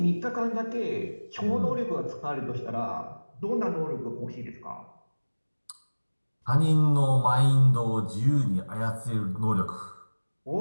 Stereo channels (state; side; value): inverted; both; correlation -1.00